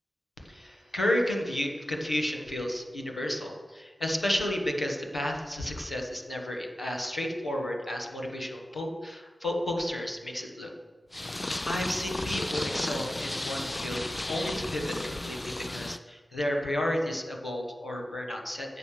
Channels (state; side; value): normal; both; correlation 0.93